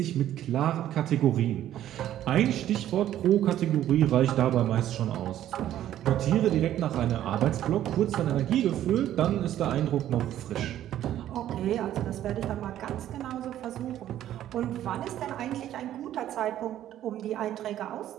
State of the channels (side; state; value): left; quieter; 12.1 dB